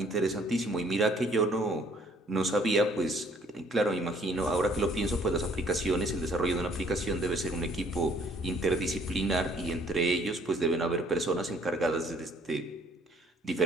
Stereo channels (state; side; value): normal; both; correlation 0.61